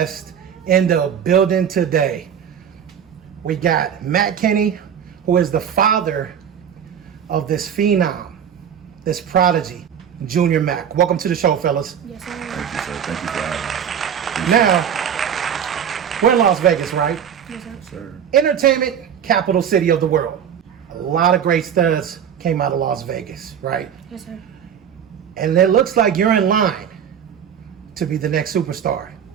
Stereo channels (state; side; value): quieter; left; 8.4 dB